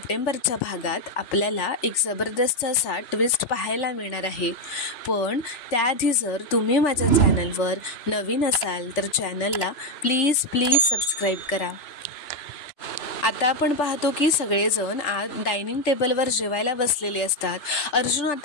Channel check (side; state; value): right; late; 3.5 ms